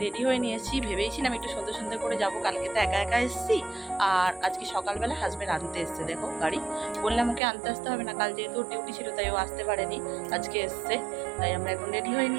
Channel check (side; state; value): left; drops out; at 7.4 s